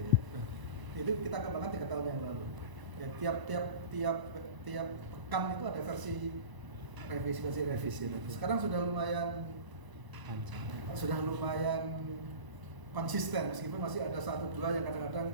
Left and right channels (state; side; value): late; left; 1.0 ms